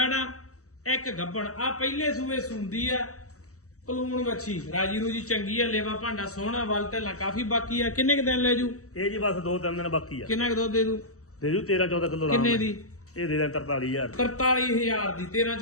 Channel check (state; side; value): late; right; 0.65 ms